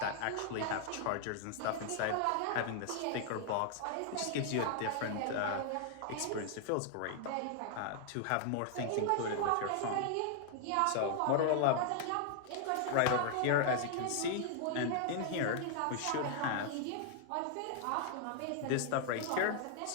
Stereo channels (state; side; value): different; both; correlation 0.00